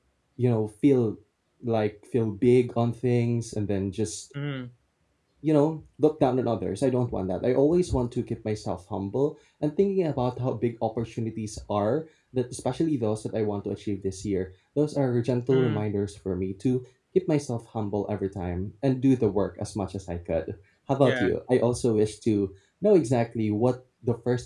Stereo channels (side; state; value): both; identical; correlation 1.00